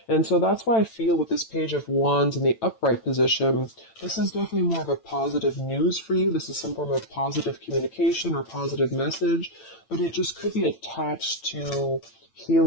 And so that's why I feel with this Page of Wands in the upright position, this is definitely more of a positive news for you. This is some form of positive communication or positive message, but it just could be attached to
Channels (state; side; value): late; right; 8.9 ms